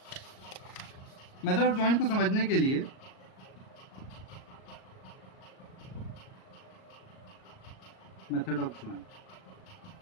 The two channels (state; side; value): late; right; 38 ms